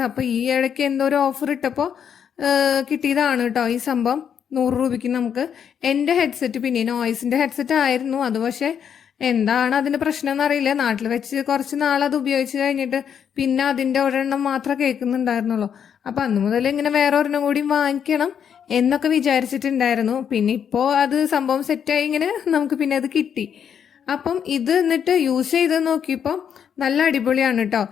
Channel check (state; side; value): quieter; right; 8.1 dB